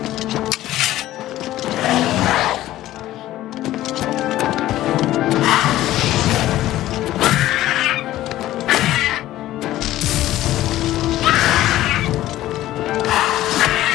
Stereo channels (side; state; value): right; quieter; 14.7 dB